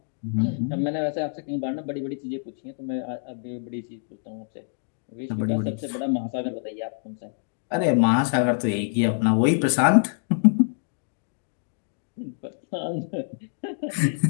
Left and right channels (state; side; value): silent; right; digital silence